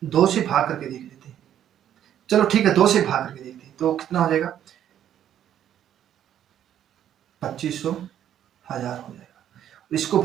2 से भाग करके देख लेते हैं, चलो ठीक है 2 से भाग करके देखते हैं, तो कितना हो जाएगा 2500 1000 हो जाएगा, इसको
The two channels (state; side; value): quieter; left; 10.5 dB